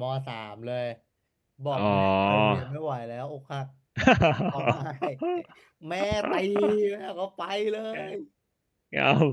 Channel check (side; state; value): both; identical; correlation 1.00